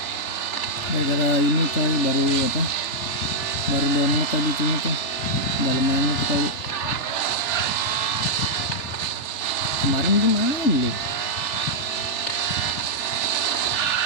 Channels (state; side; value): late; right; 3.4 ms